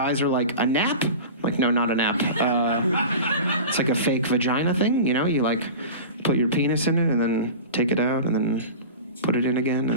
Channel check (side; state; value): both; inverted; correlation -0.33